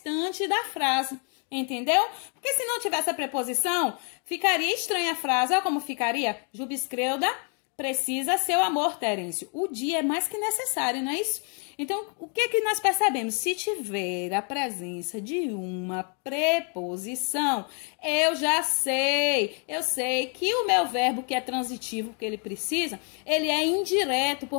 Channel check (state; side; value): quieter; right; 39.7 dB